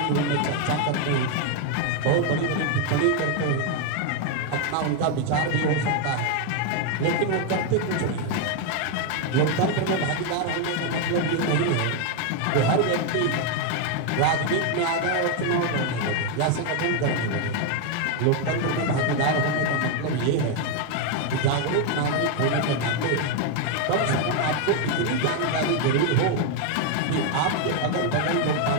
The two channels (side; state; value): both; different; correlation 0.01